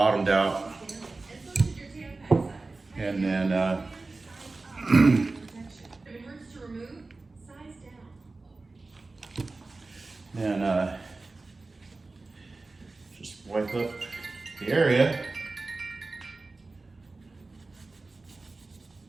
out. And then, just wipe up the area.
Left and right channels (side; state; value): left; quieter; 3.5 dB